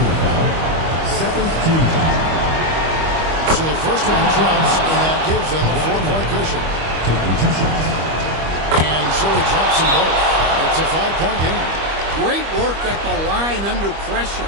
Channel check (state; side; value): late; left; 25 ms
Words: Second team foul. So the first one drops, and that gives them a 4-point cushion. Taking 2 shots. And so he drops them both. It's a 5-point game. Great work at the line under pressure.